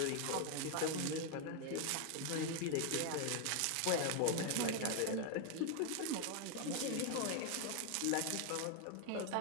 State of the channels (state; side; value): different; both; correlation 0.01